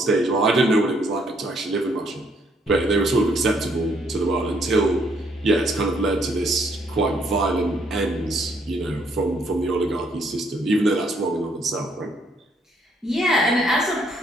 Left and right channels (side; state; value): both; normal; correlation 0.69